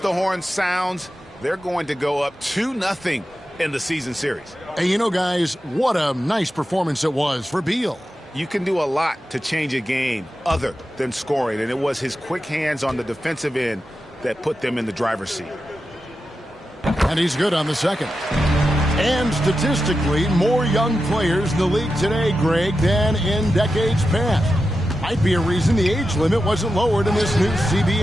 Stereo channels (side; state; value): both; normal; correlation 0.91